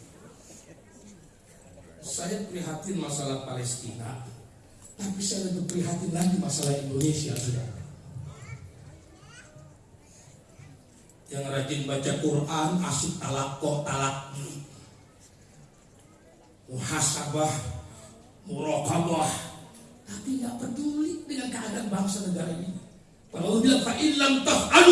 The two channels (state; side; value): identical; both; correlation 1.00